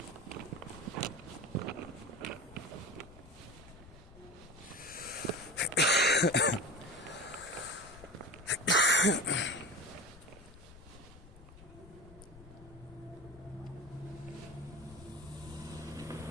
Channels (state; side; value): noise; left; rumble, 19 dB below the sound